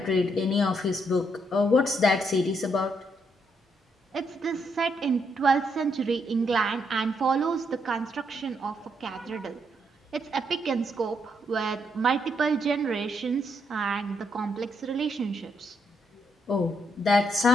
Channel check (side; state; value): both; normal; correlation 0.76